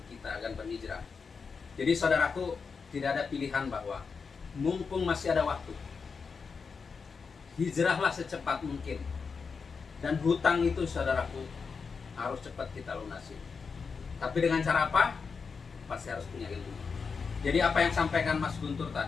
kita agar berhijrah. Jadi saudaraku, tidak ada pilihan bahwa mumpung masih ada waktu, hijrahlah secepat mungkin. Dan hutang itu saudaraku harus cepat kita lunasi. Tapi dengan cara apa? Pasti harus punya ilmu. Jadi apa yang sampaikan Mas Guntur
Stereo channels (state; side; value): quieter; right; 5.3 dB